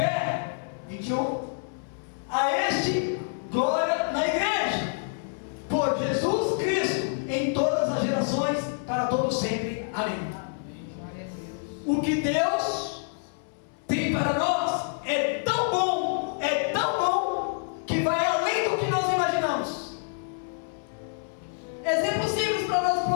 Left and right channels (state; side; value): silent; right; digital silence